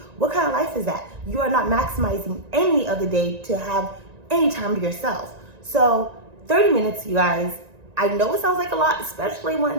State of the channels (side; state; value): left; late; 1.9 ms